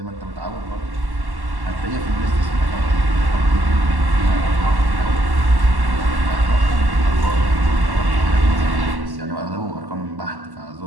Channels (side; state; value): left; late; 1.1 ms